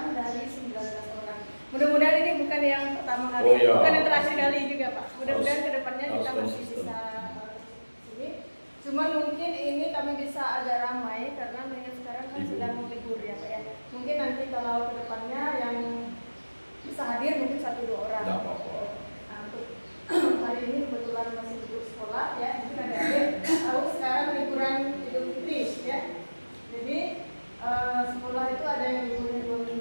dari 19 orang. Mudah-mudahan ini bukan yang pertama kali, bukan yang terakhir kali juga Pak. Mudah-mudahan kedepannya kita masih bisa sini. Cuma mungkin ini kami bisa agak ramai karena mengingat sekarang kan sedang libur ya Pak ya. Mungkin nanti kalau kedepannya yang bisa hadir mungkin 1-2 orang. Tidak apa-apa. Nah, untuk hari ini kebetulan masih libur sekolah ya. Mungkin ada tahu sekarang liburan Idul Fitri ya. Jadi sekolah itu ada yang liburnya 2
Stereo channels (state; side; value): inverted; both; correlation -1.00